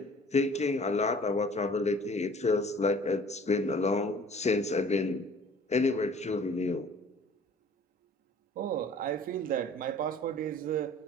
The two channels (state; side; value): normal; both; correlation 0.50